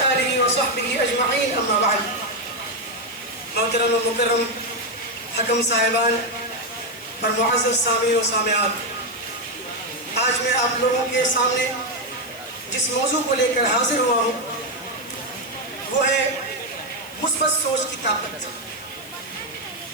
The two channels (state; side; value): noise; left; hiss, 19 dB below the sound